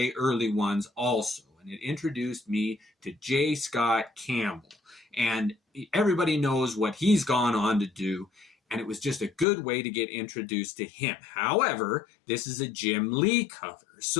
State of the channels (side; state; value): right; drops out; at 9.5 s